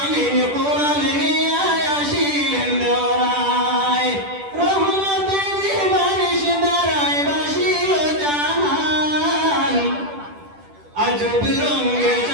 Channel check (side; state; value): left; late; 10 ms